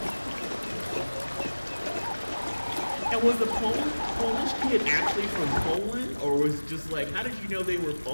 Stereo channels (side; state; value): both; inverted; correlation -1.00